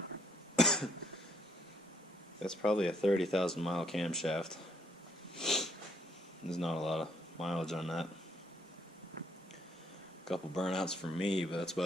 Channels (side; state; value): both; normal; correlation 0.70